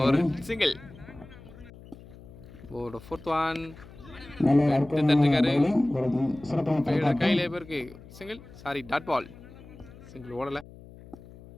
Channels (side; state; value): left; noise; hum, 19 dB below the sound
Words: ஒரு சிங்கிள். ஒரு ஃபோர்த் ஒன் தட்டிருக்காரு. கையிலே பேருக்கு single. Sorry dot ball. Single ஓடல.